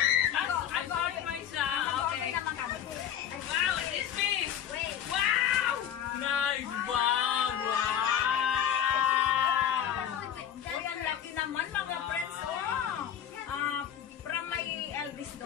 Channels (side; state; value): right; quieter; 9.7 dB